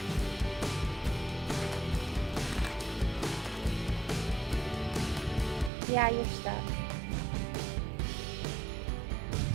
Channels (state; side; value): drops out; left; at 5.7 s